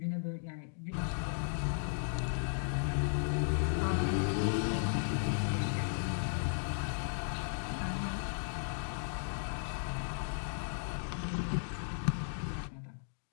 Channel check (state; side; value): silent; right; digital silence